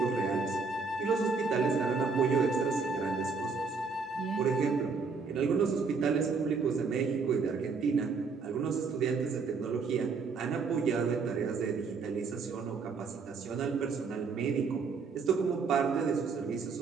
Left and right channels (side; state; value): left; quieter; 4.9 dB